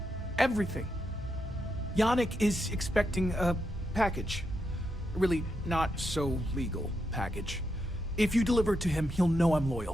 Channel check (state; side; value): normal; both; correlation 0.83